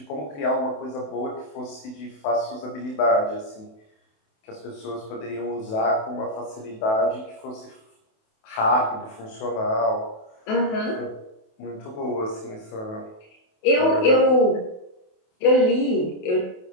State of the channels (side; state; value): right; late; 28 ms